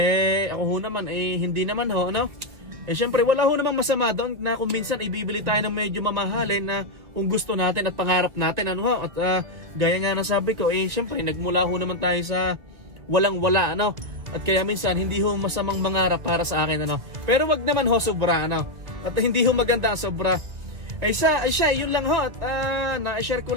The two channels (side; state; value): left; late; 2.2 ms